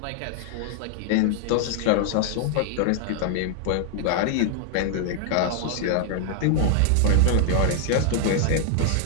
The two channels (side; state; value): both; different; correlation -0.01